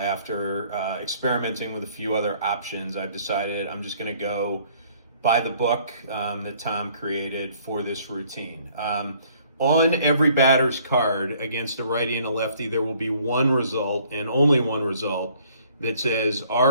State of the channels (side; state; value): both; inverted; correlation -0.60